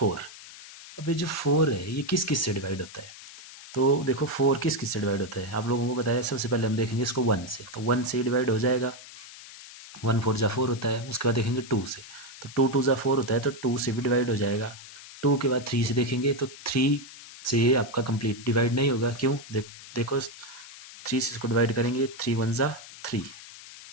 अब ये जो 4 है ये किस किस से डिवाइड होता है। तो देखो 4 किस किस से डिवाइड होता है आप लोगों को बताया। सबसे पहले हम देखेंगे इसको 1 से, तो 1 से डिवाइड हो जाएगा। 1 4 जा 4 होता है। उसके बाद देखेंगे 2 से, तो 2 2 जा 4 होता है, तो 2 से भी डिवाइड हो जाएगा। 2 के बाद 3 से देखेंगे, तो 3 से आपका कंप्लीट डिवाइड नहीं होगा। क्यों, देखो 3 से इसको डिवाइड करेंगे, 3 1 जा 3,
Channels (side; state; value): left; noise; hiss, 16 dB below the sound